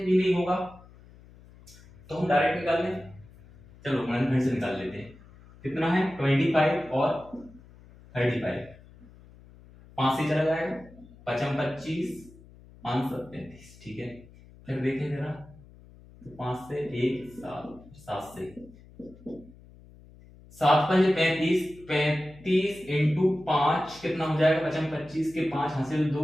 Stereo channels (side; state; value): left; noise; hum, 23 dB below the sound